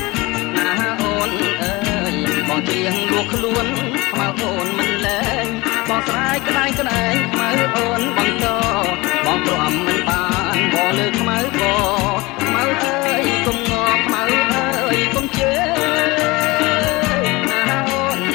ណាអូនអើយបងច្រៀងលួខ្លួនខ្មៅអូនមិនលែងបងស្រាយក្តែងក្តែងខ្មៅអូនបន្តបងទ្រាំមិនបានបងលើខ្មៅក៏ខ្មៅអើយកុំងល់ខ្មៅអើយកុំជឿណាអូន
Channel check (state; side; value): quieter; right; 22.8 dB